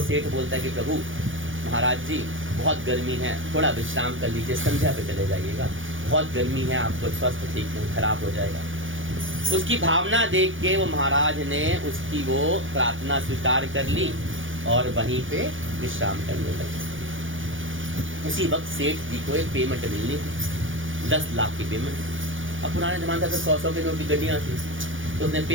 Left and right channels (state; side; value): late; left; 0.57 ms